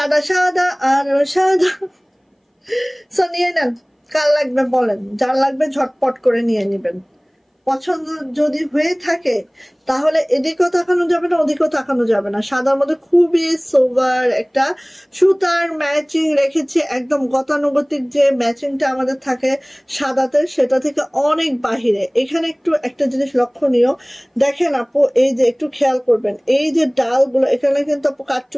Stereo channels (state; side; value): identical; both; correlation 1.00